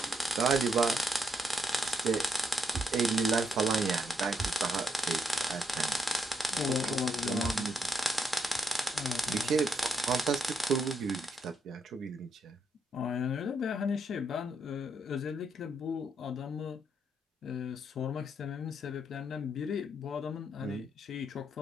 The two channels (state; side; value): normal; both; correlation 0.77